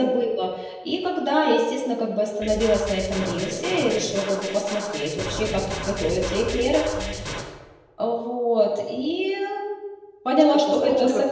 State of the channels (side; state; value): both; identical; correlation 1.00